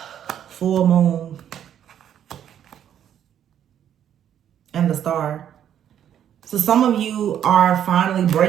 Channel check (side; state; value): left; quieter; 9.8 dB